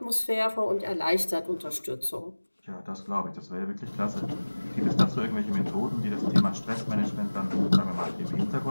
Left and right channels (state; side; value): inverted; both; correlation -1.00